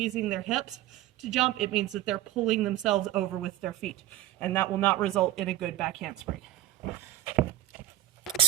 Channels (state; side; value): quieter; left; 14.3 dB